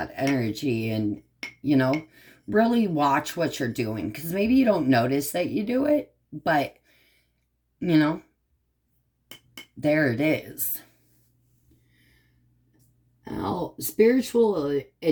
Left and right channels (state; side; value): identical; both; correlation 1.00